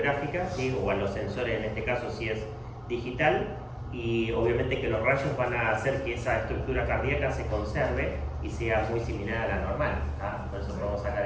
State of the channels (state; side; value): identical; both; correlation 1.00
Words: ¿sí? O a los sensores, en este caso si es digital, y obviamente que los rayos van a hacer que esa estructura cardíaca se conserve y sea muy similar a la normal, ¿tá? Por eso podemos sacar